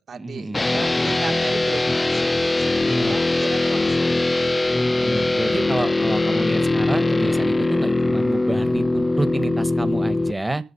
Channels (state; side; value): normal; both; correlation 0.98